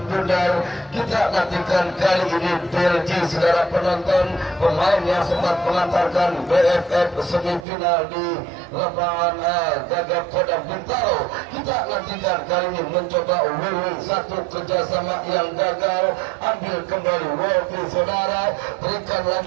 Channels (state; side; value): drops out; left; at 7.7 s